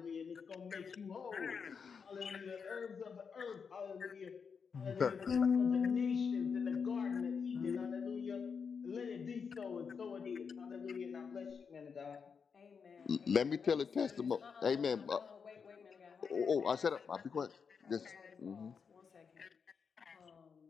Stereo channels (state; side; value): quieter; right; 6.0 dB